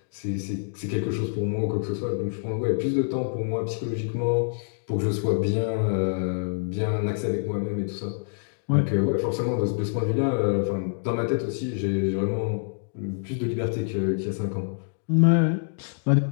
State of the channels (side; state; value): right; silent; digital silence